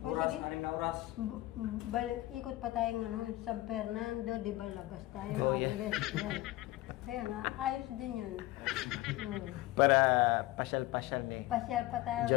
O sige. Ikot pa tayo San Fernando, di ba labas tayo? Yeah. Yan. Kaya nga, ayos din yun. Para pasyal-pasyal, eh. Pasyal pa tayo.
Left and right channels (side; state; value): right; quieter; 17.7 dB